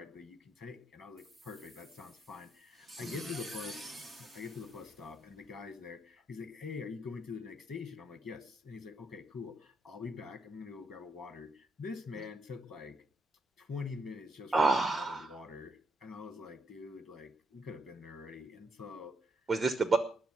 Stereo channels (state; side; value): normal; both; correlation 0.78